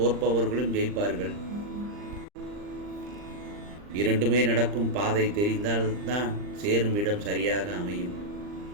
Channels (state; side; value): late; left; 39 ms